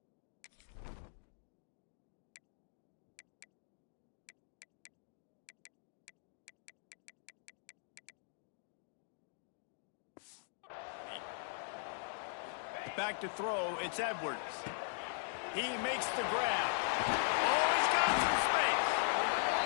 Back to throw, it's Edwards. He makes the grab. Oh, he's got some space.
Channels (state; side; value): silent; right; digital silence